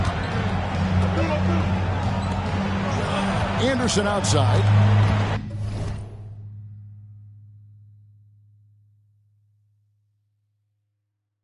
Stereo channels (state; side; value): identical; both; correlation 1.00